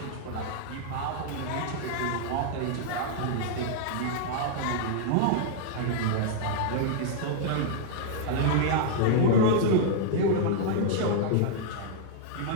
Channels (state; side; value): different; both; correlation -0.01